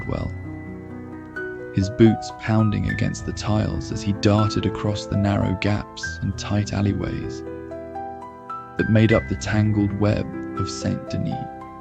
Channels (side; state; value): both; identical; correlation 1.00